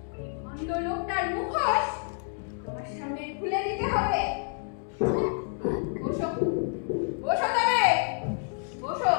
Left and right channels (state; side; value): silent; right; 59 dB below the other